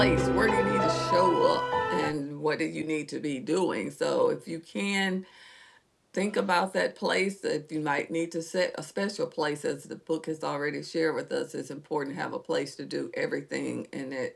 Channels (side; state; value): both; identical; correlation 1.00